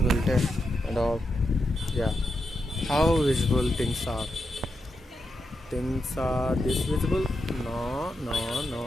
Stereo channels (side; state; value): both; normal; correlation 0.86